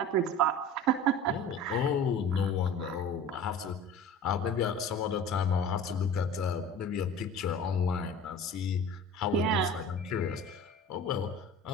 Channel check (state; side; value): normal; both; correlation 0.39